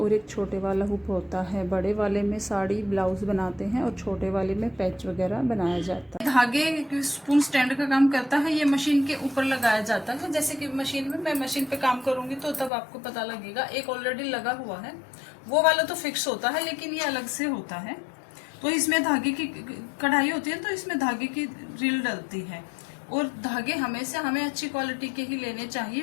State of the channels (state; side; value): drops out; right; at 12.7 s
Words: एक छोटे वाला हुप होता है। बड़े वाले में साड़ी ब्लाउज बनाते हैं और छोटे वाले में पैच वगैरह बनाया जाता है। धागे स्पून स्टैंड का काम करता है। ये मशीन के ऊपर लगाया जाता है। जैसे कि मशीन में मैं मशीन पे काम करूंगी तो तब आपको पता लगेगा। एक ऑलरेडी लगा हुआ है, वो वाला तो फिक्स होता है, लेकिन ये अलग से होता है। तो इसमें धागे की कढ़ाई होती है, तो इसमें धागे की रील डलती है। और धागे हमेशा हमें अच्छी क्वालिटी के ही लेने चाहिए,